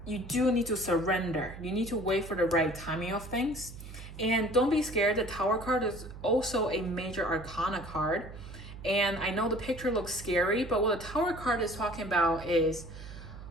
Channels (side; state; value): right; noise; hum, 13 dB below the sound